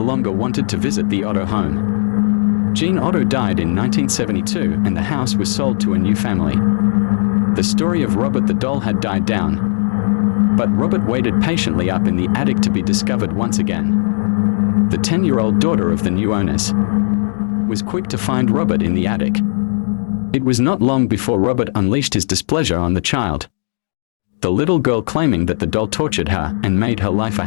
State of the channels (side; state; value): right; silent; digital silence